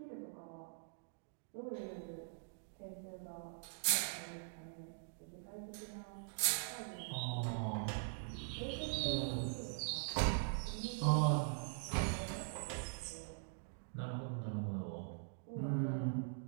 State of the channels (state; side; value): silent; left; digital silence